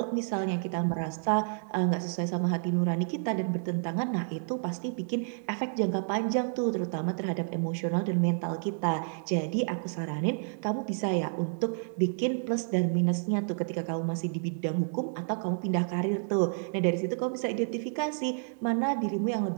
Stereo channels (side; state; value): left; silent; digital silence